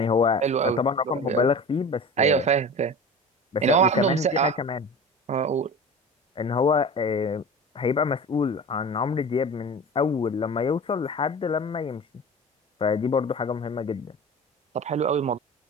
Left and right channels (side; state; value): both; normal; correlation 0.35